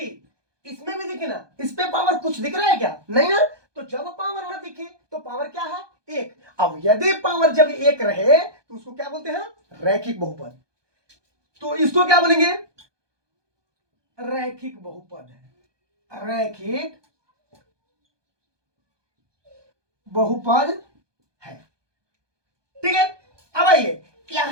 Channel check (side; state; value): left; late; 1.2 ms